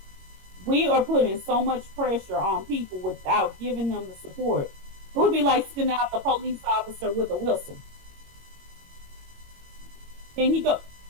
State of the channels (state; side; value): late; left; 22 ms